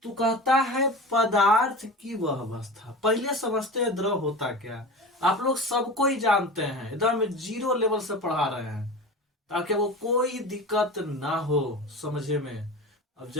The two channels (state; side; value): normal; both; correlation 0.31